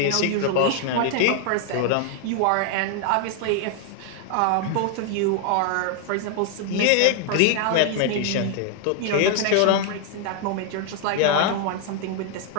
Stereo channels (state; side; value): different; both; correlation 0.00